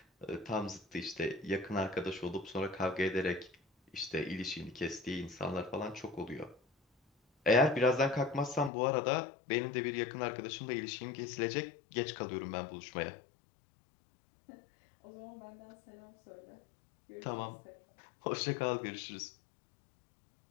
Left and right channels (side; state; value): right; drops out; at 8.7 s